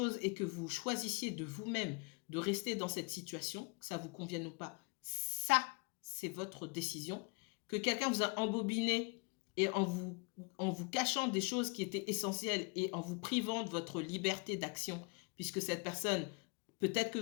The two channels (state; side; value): quieter; right; 31.9 dB